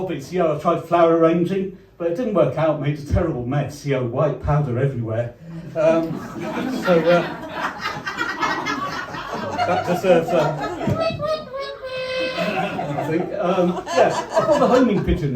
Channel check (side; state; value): both; identical; correlation 1.00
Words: I tried flower arranging, but it didn't work out, made a terrible mess. White powder everywhere. That deserves I think. I bought a homing pigeon